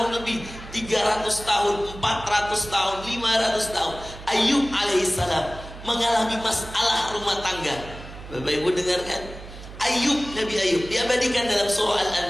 lebih, 300 tahun, 400 tahun, 500 tahun, Ayub alaihissalam mengalami masalah rumah tangga. Bapak Ibu dengarkan, Nabi Ayub diabadikan dalam surah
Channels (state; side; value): noise; right; hum, 14 dB below the sound